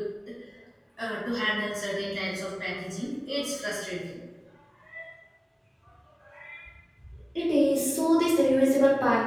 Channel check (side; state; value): both; identical; correlation 1.00